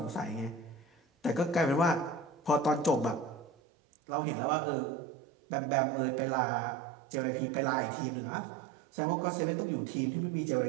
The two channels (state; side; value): drops out; left; at 3.5 s